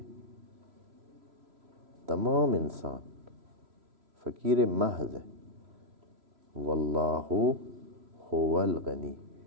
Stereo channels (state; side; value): late; left; 3.0 ms